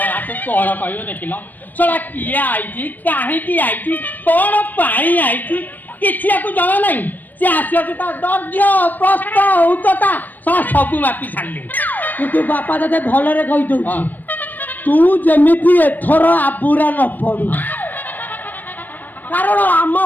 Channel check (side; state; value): right; late; 0.088 ms